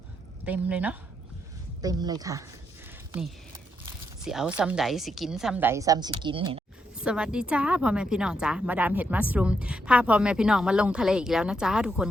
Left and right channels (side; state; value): both; normal; correlation 0.80